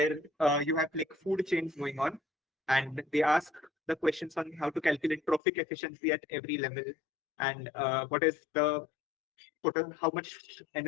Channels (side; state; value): right; drops out; at 5.4 s